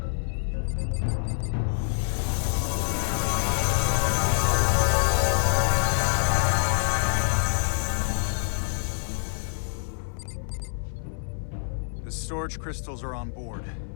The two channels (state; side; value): silent; right; 58 dB below the other